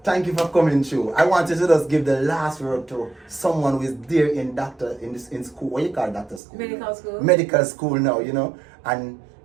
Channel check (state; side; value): drops out; left; at 6.4 s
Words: thank you for coming through. I wanted to just give the last word to someone who is there in school. What you call doctor school? Medical school. Medical school now, and